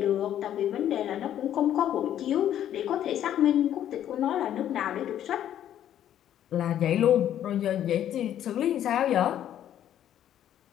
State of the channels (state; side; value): quieter; right; 11.0 dB